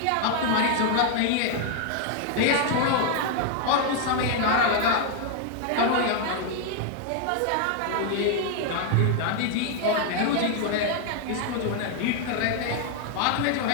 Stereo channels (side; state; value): both; different; correlation 0.00